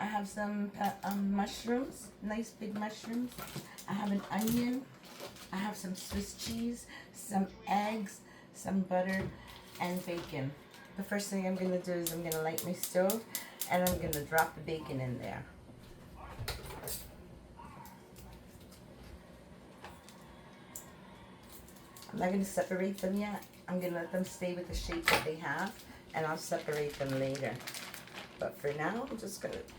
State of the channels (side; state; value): both; identical; correlation 1.00